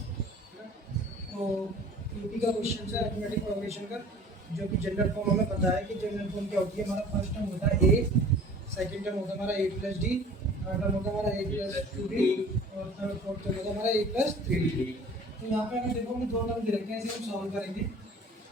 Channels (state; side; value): normal; both; correlation 0.46